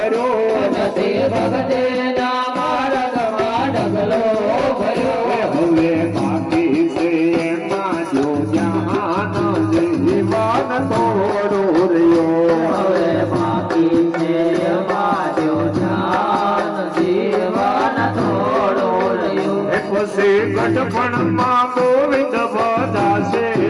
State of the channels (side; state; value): both; identical; correlation 1.00